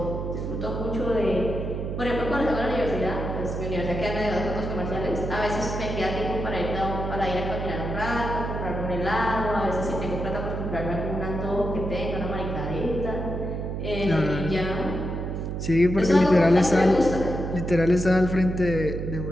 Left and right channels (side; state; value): right; noise; hum, 4 dB below the sound